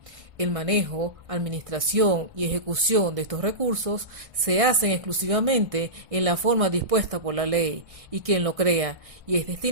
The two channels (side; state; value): left; late; 1.6 ms